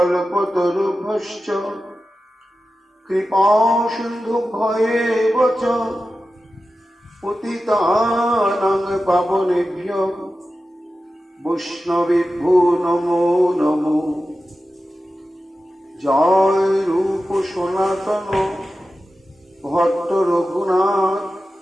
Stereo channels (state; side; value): normal; both; correlation 0.93